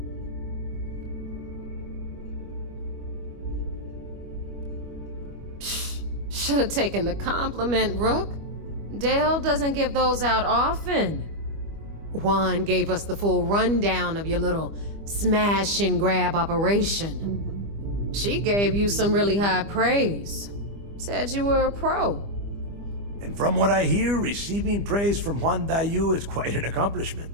Should have taken the compliment, Rook. Dale doesn't give those out often. Juan gave us the full rundown of your little smash and grab operation. She gave you some really high praise. Said you were a pro. And from what I hear, receiving praise from Juan Dayu is quite an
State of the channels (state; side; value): late; left; 25 ms